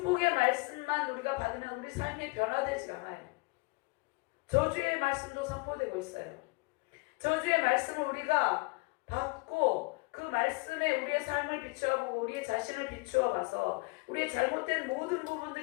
말씀만 우리가 받으면 우리 삶이 변화되지 않아요. 저주의 말씀도 선포되고 있어요. 저주의 말씀을 우리가 받고 그 말씀에 우리의 삶을 비추어보고 우리의 자신을 비추어 봐서 우리의 잘못된 모든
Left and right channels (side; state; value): right; quieter; 27.7 dB